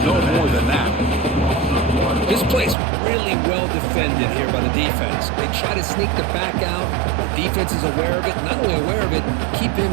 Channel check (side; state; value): left; drops out; at 2.8 s